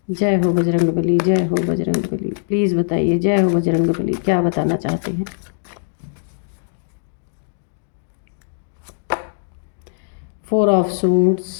जय हो बजरंगबली, जय हो बजरंगबली। प्लीज़ बताइए, जय हो बजरंगबली, क्या बताना चाहते हैं। Four of suits,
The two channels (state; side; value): silent; right; digital silence